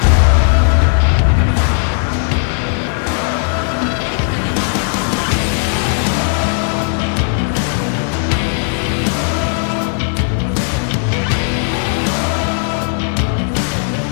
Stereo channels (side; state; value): right; silent; 56 dB below the other